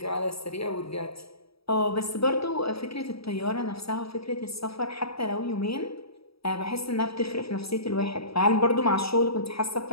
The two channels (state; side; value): late; right; 0.77 ms